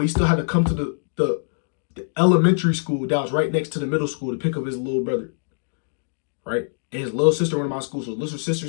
he still had to come to the elementary school that was right next to the middle school to pick up his little brother. Right? And his little sister went to my school. So his little sister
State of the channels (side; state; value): right; silent; digital silence